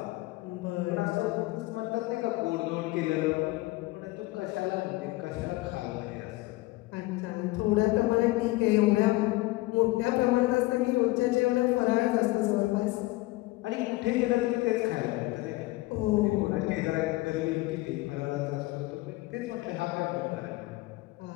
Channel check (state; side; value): quieter; right; 20.3 dB